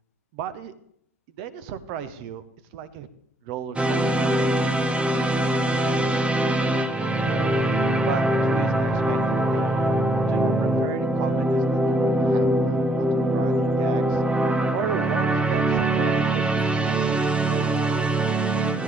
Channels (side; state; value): both; normal; correlation 0.71